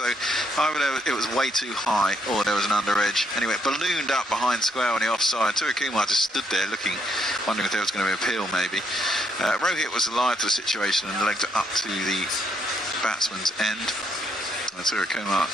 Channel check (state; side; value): normal; both; correlation 0.74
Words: either it was way too high or there was an under edge. Anyway, it ballooned up behind square on the offside. Surya Kumar just stood there looking, wondering if there was going to be an appeal maybe. Rohit was alive to the situation and legged it up to the batsman's end. And Surya Kumar